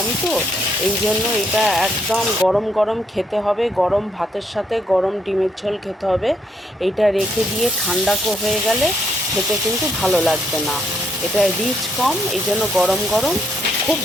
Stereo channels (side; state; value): both; normal; correlation 0.73